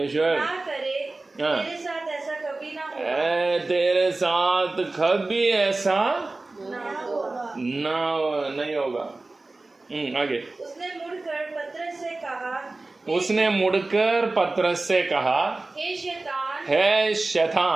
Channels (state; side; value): quieter; left; 3.2 dB